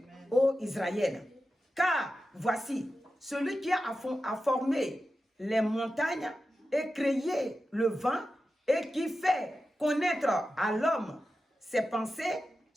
ô Israël. Car voici, celui qui a formé les montagnes et créé le vent et qui fait connaître à l'homme ses pensées,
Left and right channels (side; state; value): both; normal; correlation 0.92